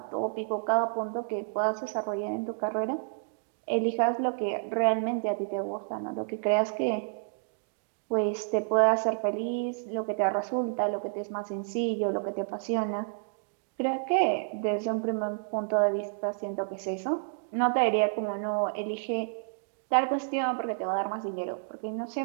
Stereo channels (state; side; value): silent; left; digital silence